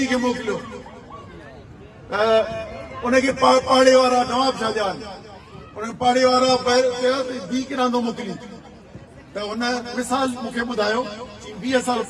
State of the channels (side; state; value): both; identical; correlation 1.00